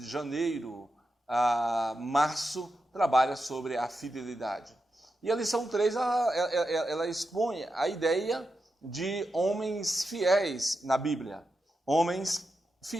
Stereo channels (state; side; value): normal; both; correlation 0.88